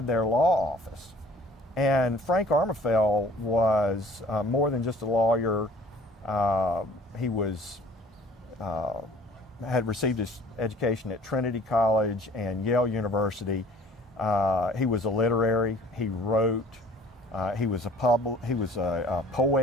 their law office. And Frank Armefeld was more than just a lawyer. He had received his education at Trinity College and Yale University. He was a literary. He wrote. He was a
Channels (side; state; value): both; normal; correlation 0.52